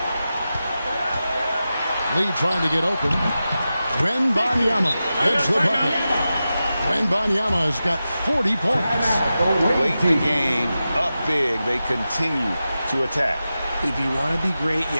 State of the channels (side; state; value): both; inverted; correlation -0.92